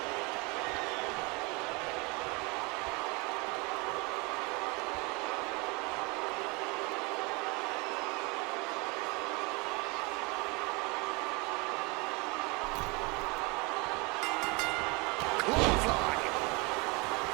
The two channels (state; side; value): quieter; left; 28.1 dB